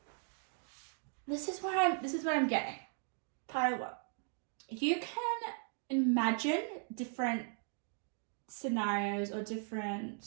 this is what I'm getting. Pile up. You can imagine different scenarios or different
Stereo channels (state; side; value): silent; left; 53 dB below the other